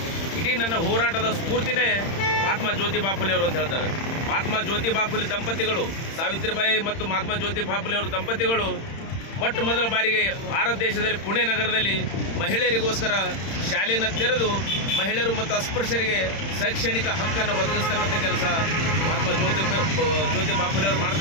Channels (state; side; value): late; right; 31 ms